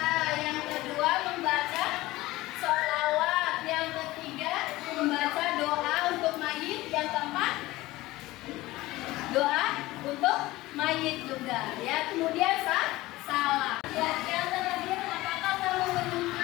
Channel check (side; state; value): right; quieter; 18.5 dB